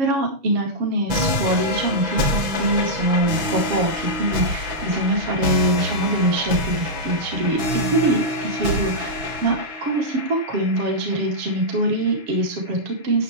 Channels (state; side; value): late; left; 6.1 ms